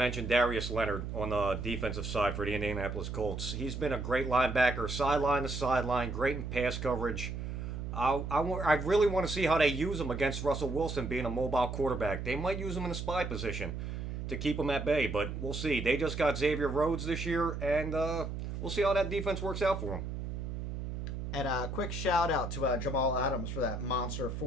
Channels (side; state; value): right; noise; hum, 5 dB below the sound